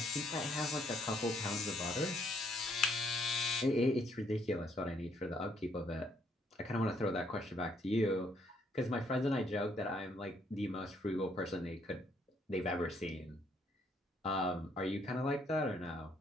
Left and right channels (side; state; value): both; normal; correlation 0.70